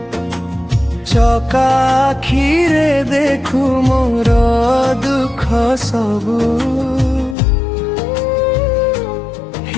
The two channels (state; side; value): drops out; right; at 7.4 s